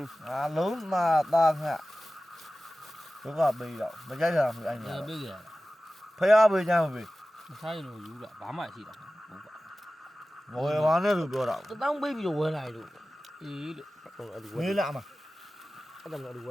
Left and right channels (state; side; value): normal; both; correlation 0.96